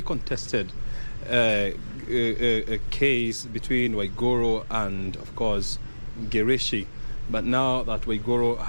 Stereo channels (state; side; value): inverted; both; correlation -1.00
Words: contested case between Waigoro and, of course, Girishi. But now that Waigoro